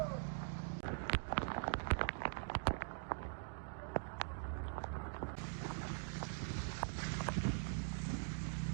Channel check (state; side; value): silent; left; digital silence